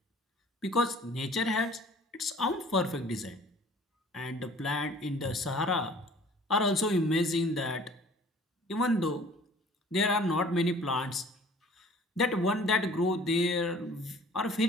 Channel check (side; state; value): both; normal; correlation 0.50